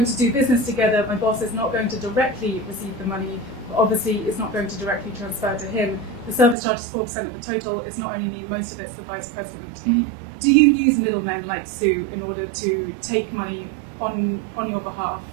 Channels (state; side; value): drops out; left; at 6.6 s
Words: to do business together, my boss is not going to directly receive the money. Obviously, it's not going to directly transfer to him. The service charge is 4% of the total. It's not only me, most of it's the vice president. Mm-hmm. Do you use middlemen like Sue in order to take money on your behalf